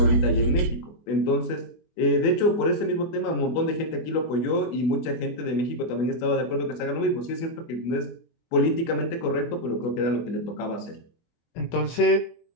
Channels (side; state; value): right; late; 24 ms